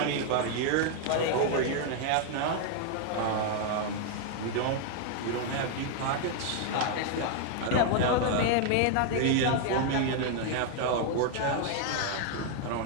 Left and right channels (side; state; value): both; different; correlation 0.00